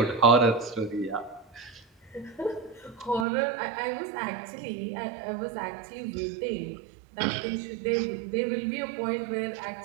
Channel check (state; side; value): drops out; left; at 3.2 s